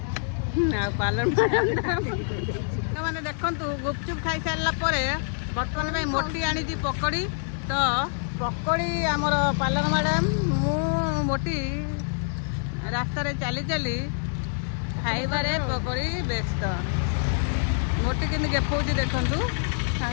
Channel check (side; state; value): right; silent; 60 dB below the other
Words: पालन मैंने देखु गुपचुप खाई सारा बर्तमान में मोटी आनी पकड़ी तो पकड़ी आमर पालन मैडम मु मोटी रास्तार चली चली खाइबारे पकड़ी व्यस्त मोटी कि देखा देखु